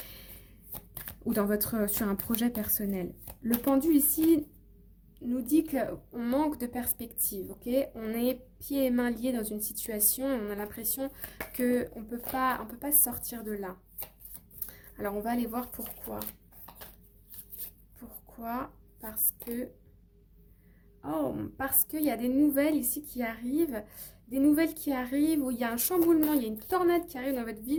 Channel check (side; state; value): both; identical; correlation 1.00